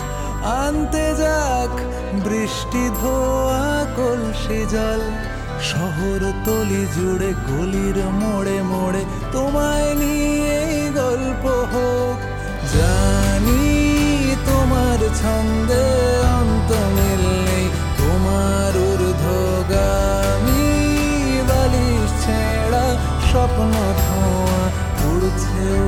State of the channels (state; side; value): identical; both; correlation 1.00